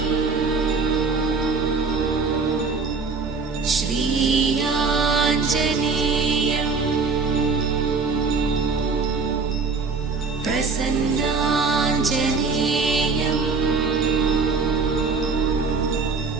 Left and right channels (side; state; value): left; quieter; 4.6 dB